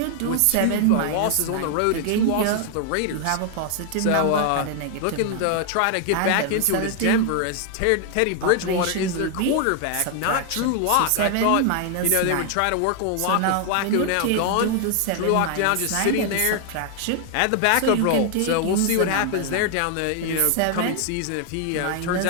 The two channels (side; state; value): both; different; correlation 0.00